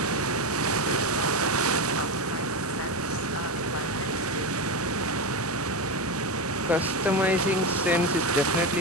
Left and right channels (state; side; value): normal; both; correlation 0.15